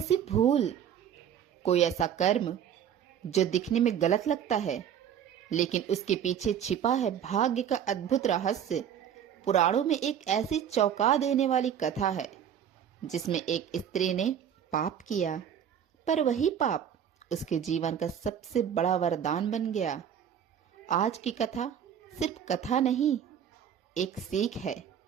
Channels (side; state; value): left; quieter; 9.1 dB